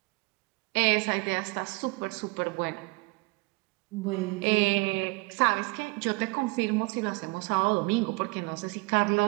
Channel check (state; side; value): quieter; left; 27.4 dB